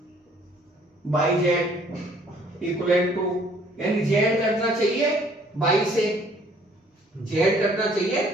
बाई जेड इक्विवेलेंट टू, यानी जेड कटना चाहिए बाई से, जेड कटना चाहिए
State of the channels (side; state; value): both; normal; correlation 0.59